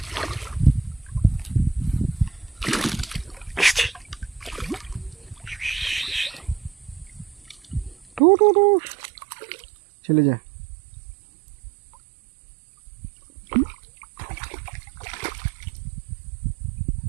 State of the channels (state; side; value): drops out; left; at 8.2 s